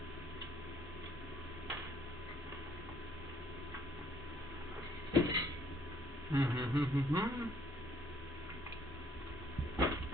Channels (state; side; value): normal; both; correlation 0.64